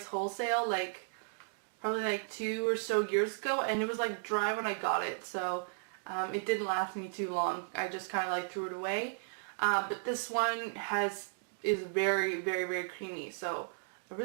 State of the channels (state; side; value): silent; left; digital silence